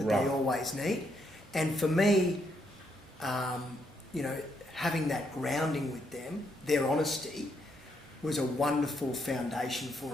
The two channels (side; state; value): both; normal; correlation 0.76